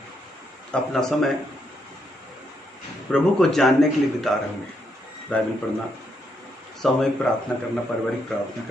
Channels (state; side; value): normal; both; correlation 0.78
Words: अपना समय प्रभु को जानने के लिए बिता रहे होंगे। बाइबल पढ़ना, सामूहिक प्रार्थना करना, पारिवारिक प्रार्थना